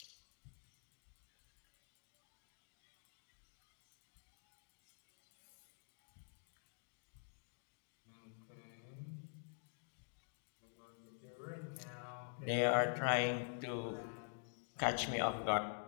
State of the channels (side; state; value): right; silent; digital silence